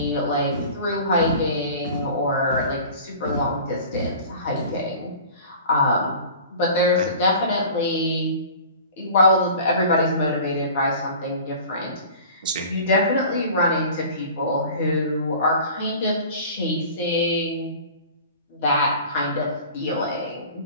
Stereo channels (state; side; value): inverted; both; correlation -0.42